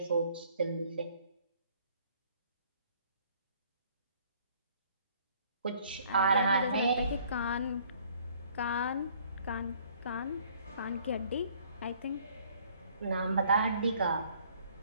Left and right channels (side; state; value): both; inverted; correlation -0.59